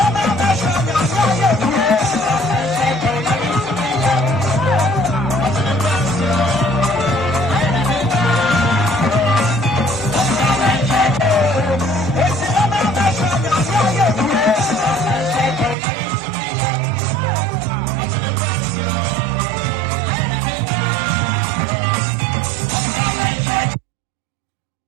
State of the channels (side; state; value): left; drops out; at 15.8 s